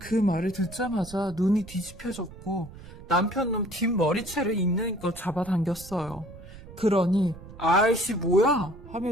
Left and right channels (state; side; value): noise; right; rumble, 17 dB below the sound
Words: 말을 듣자마자 눈이 뒤집혀졌고 남편 놈 뒷머리채를 있는 것 잡아당겼어요. 그러니 아이씨 뭐야